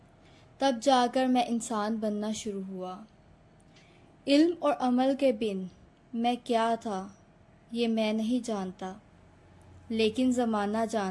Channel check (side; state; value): both; identical; correlation 1.00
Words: तब जाकर मैं इंसान बनना शुरू हुआ। इल्म और अमल के बिन मैं क्या था ये मैं नहीं जानता, लेकिन ज़माना